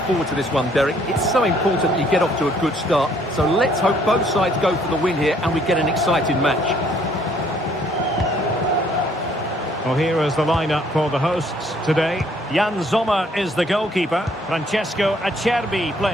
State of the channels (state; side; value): normal; both; correlation 0.64